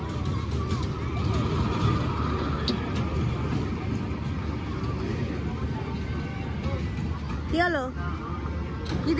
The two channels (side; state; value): both; identical; correlation 1.00